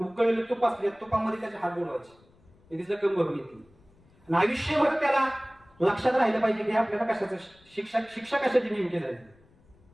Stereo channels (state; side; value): noise; left; rumble, 30 dB below the sound